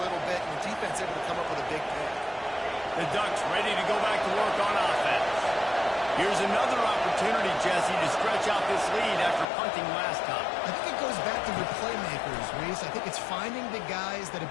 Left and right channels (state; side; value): drops out; right; at 9.5 s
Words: little bit, and the defense able to come up with a big pick. The Ducks ready to go back to work on offense. Here's another opportunity, Jesse, to stretch out this lead after punting last time. I think it goes back to your playmakers, Reese. I think it's finding the guys that have